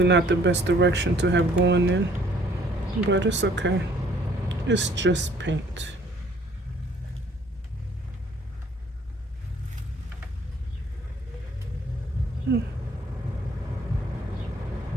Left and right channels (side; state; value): both; normal; correlation 0.60